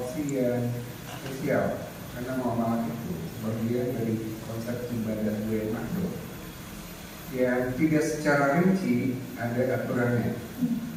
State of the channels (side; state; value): both; identical; correlation 1.00